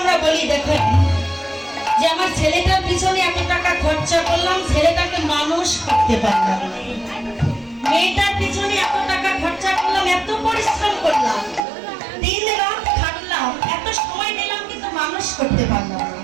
বলি, দেখেন যে আমার ছেলেটার পিছনে এত টাকা খরচা করলাম, ছেলেটাকে মানুষ করতে পারলাম না। মেয়েটার পিছনে এত টাকা খরচা করলাম, এত পরিশ্রম করলাম, দিন রাত খাটলাম, এত সময় নিলাম, কিন্তু মানুষ করতে পারলাম না।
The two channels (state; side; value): drops out; left; at 11.7 s